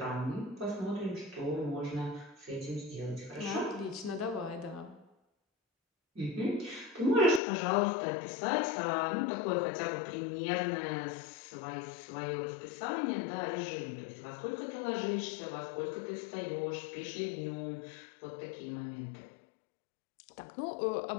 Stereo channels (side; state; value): right; drops out; at 7.4 s